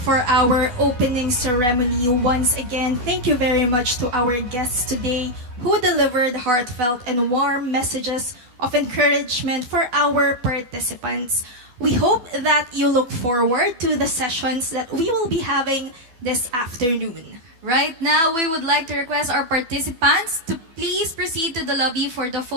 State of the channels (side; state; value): left; late; 12 ms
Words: our opening ceremony. Once again, thank you very much to our guests today who delivered heartfelt and warm messages of encouragement for our participants. We hope that you look forward to the sessions that we will be having this afternoon. Right now, we would like to request our participants to please proceed to the lobby for the